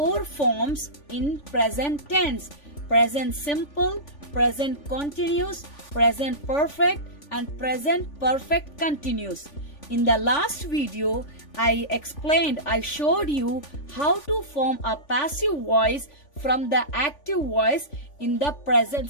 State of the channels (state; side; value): late; right; 3.5 ms